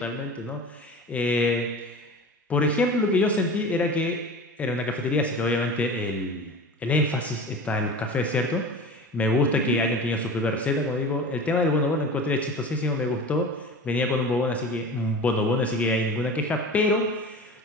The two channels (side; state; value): both; normal; correlation 0.35